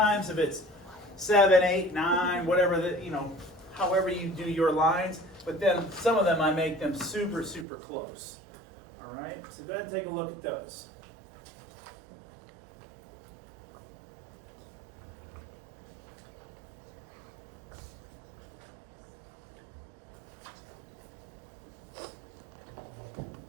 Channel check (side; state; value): left; drops out; at 7.7 s